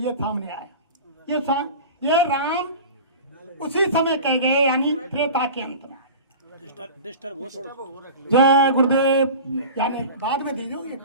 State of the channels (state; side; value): inverted; both; correlation -0.35